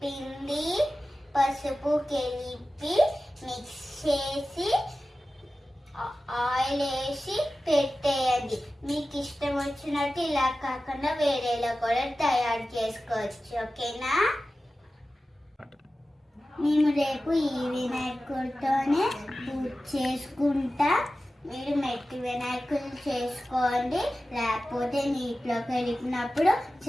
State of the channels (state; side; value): normal; both; correlation 0.95